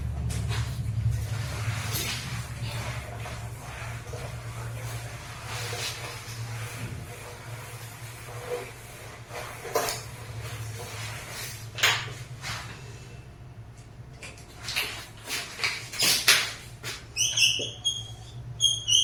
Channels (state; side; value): identical; both; correlation 1.00